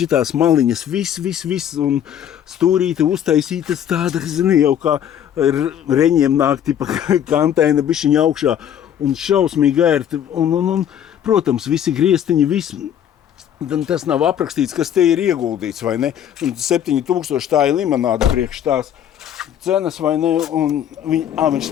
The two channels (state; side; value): quieter; right; 9.8 dB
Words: maliņas, viss, un stūrīte uztaisītas tāda, zini, jau kā reņiem nāk, tipa kantaina bišķiņa augšā, un šausmīgi ērti, un protams, visi griestiņi, viss. Tas nav aprakstīts, kas te ir ieguldīts, vai ne? Un 7,000 tā ir limonāda priekš tās cenas, vai ne? Un viņš